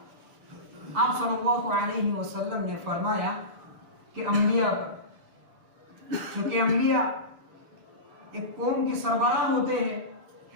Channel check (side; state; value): left; late; 7.0 ms